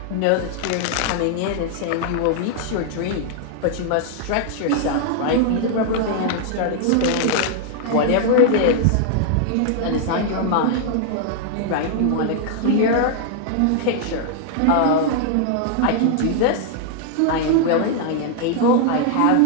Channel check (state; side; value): different; both; correlation 0.00